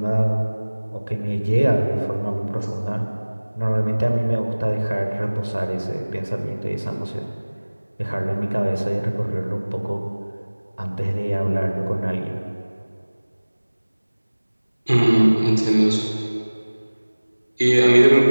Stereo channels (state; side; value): inverted; both; correlation -1.00